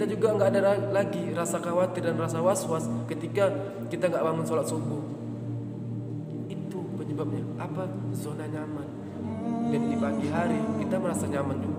juga nggak ada lagi rasa khawatir dan rasa was-was ketika kita nggak bangun sholat subuh. Itu penyebabnya apa? Zona nyaman. Dan di pagi hari kita merasa nyaman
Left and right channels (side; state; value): both; identical; correlation 1.00